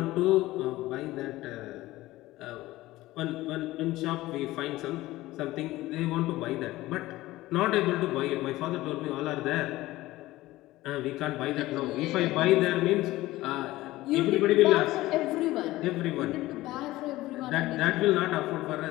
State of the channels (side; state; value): right; quieter; 17.5 dB